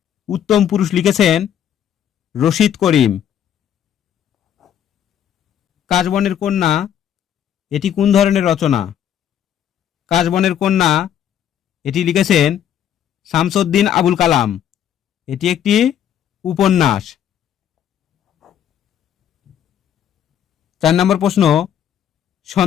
উত্তম পুরুষ লিখেছেন রশিদ করিম। কাশবনের কন্যা এটি কোন ধরনের রচনা? কাশবনের কন্যা এটি লিখেছেন শামসুদ্দিন আবুল কালাম। এটি একটি উপন্যাস। 4 নম্বর প্রশ্ন,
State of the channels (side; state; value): right; quieter; 9.8 dB